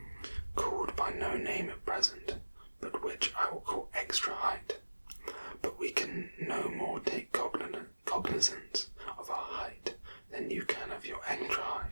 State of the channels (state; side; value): inverted; both; correlation -1.00